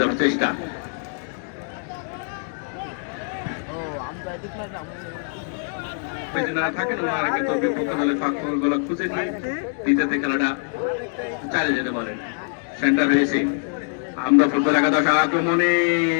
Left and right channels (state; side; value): silent; right; 57 dB below the other